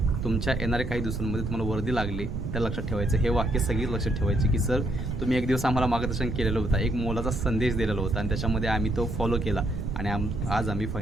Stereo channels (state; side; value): noise; right; rumble, 4 dB below the sound